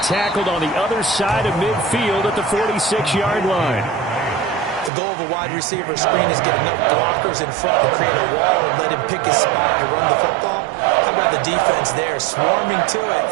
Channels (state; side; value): drops out; left; at 4.9 s